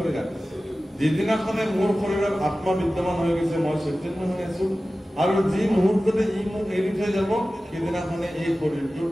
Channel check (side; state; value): both; normal; correlation 0.96